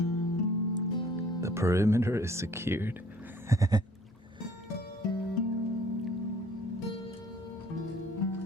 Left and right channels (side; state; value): both; normal; correlation 0.56